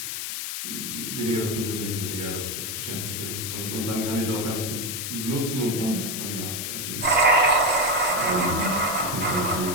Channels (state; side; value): noise; left; hiss, 4 dB below the sound